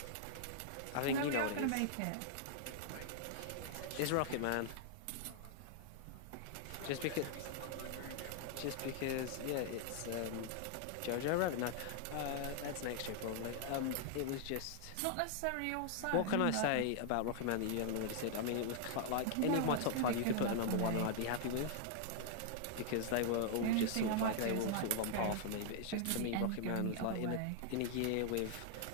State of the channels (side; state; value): both; different; correlation 0.00